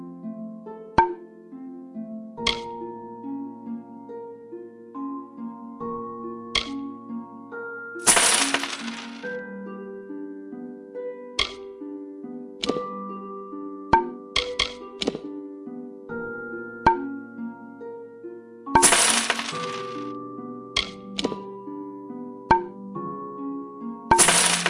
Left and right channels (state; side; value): identical; both; correlation 1.00